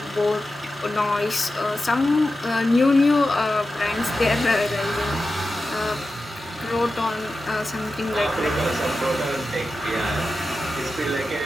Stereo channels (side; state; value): both; normal; correlation 0.92